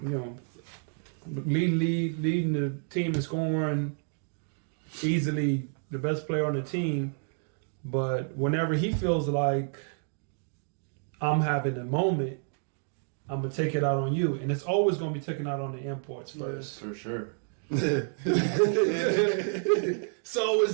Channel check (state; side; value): silent; left; 58 dB below the other